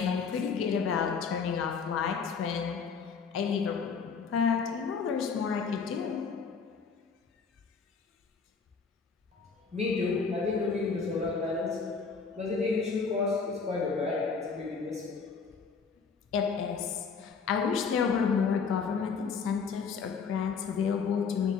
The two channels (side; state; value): right; quieter; 5.5 dB